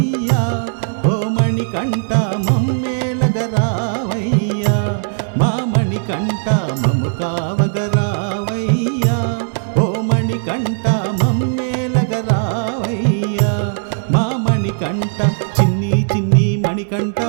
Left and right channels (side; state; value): left; silent; digital silence